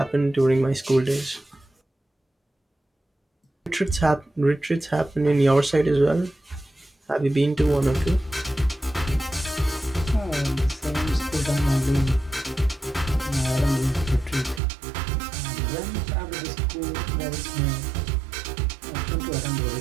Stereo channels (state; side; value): drops out; left; at 14.6 s